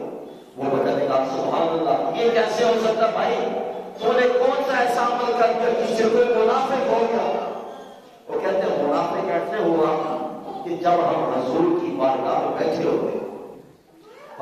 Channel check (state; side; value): identical; both; correlation 1.00